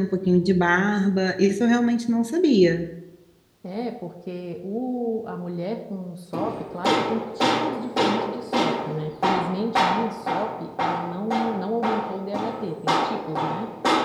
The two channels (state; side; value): identical; both; correlation 1.00